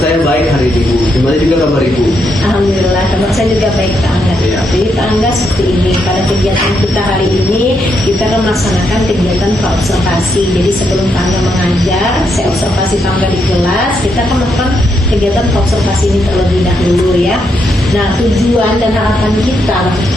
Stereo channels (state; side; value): normal; both; correlation 0.79